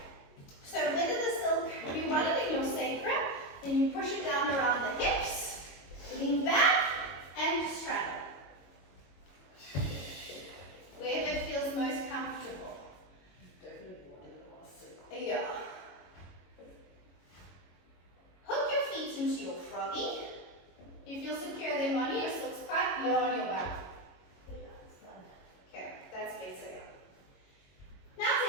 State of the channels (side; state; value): right; late; 22 ms